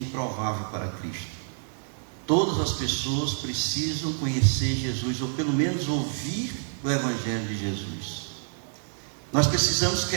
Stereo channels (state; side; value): silent; left; digital silence